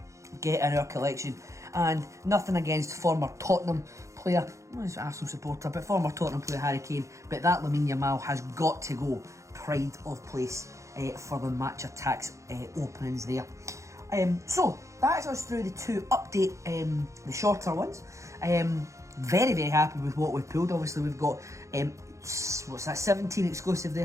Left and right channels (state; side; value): late; left; 0.15 ms